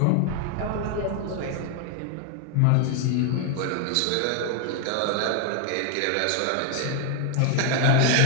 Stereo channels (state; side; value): different; both; correlation 0.00